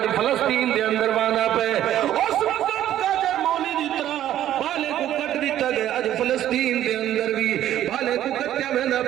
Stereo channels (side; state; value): left; quieter; 12.1 dB